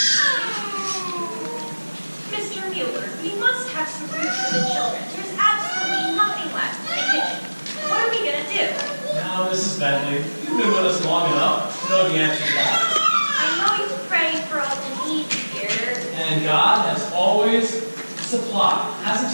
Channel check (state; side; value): inverted; both; correlation -1.00